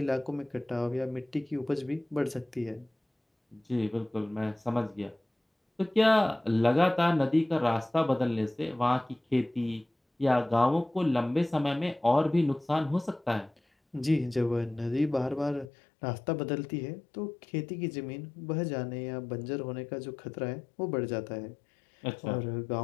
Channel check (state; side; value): drops out; right; at 15.7 s